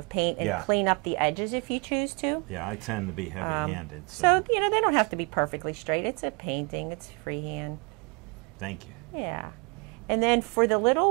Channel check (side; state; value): left; quieter; 32.0 dB